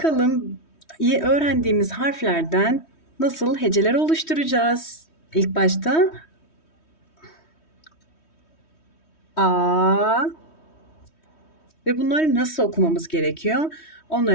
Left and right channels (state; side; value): late; right; 3.1 ms